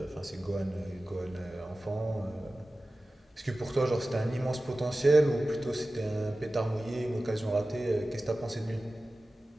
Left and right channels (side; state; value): both; normal; correlation 0.96